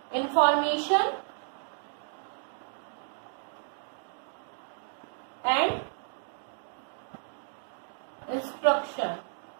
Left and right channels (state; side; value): silent; left; digital silence